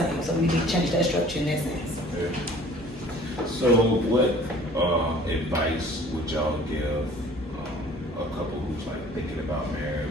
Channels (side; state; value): both; normal; correlation 0.50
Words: So we need to change that structure in that sense. Yeah. So what advice would y'all give a couple who's like thinking about